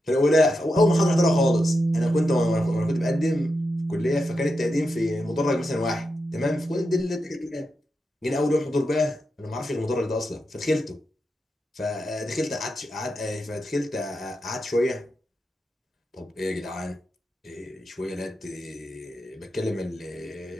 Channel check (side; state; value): both; normal; correlation 0.87